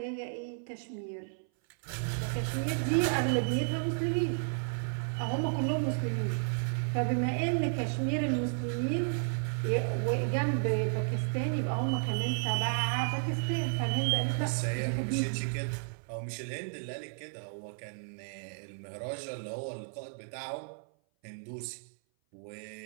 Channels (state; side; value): silent; left; 56 dB below the other